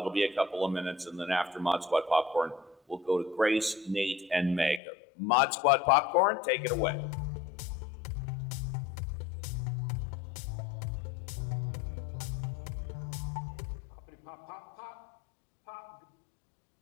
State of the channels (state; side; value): drops out; right; at 4.8 s